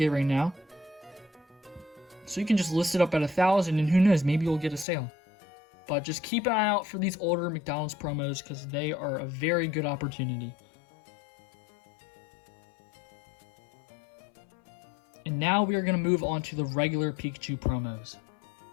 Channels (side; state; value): right; drops out; at 4.9 s